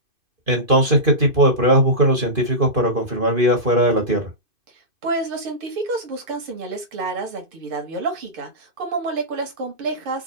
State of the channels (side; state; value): left; late; 2.5 ms